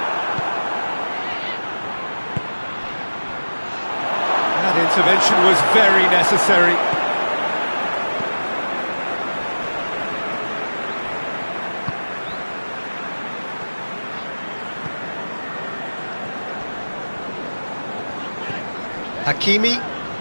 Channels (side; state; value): both; inverted; correlation -1.00